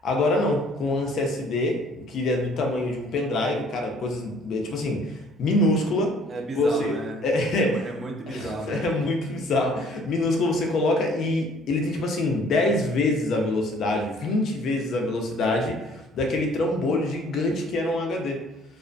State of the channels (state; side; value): normal; both; correlation 0.57